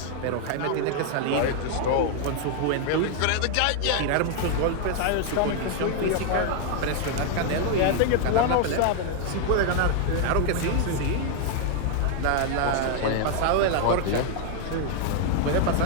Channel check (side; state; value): both; different; correlation 0.00